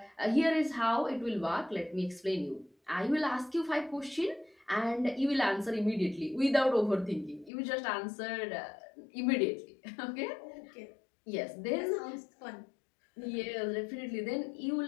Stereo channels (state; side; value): drops out; right; at 7.5 s